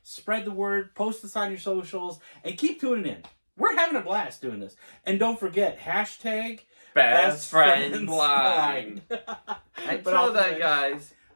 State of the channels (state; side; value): inverted; both; correlation -1.00